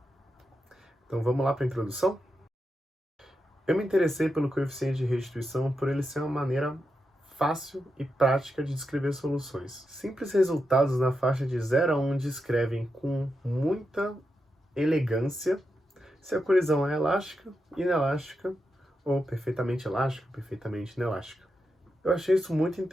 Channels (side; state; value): both; normal; correlation 0.87